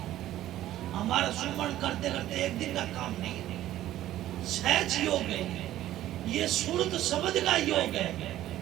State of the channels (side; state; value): left; quieter; 13.7 dB